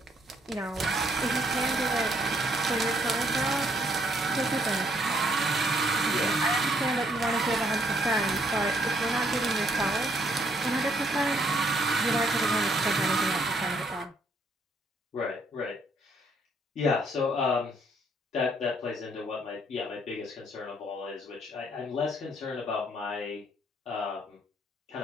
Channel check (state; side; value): normal; both; correlation 0.68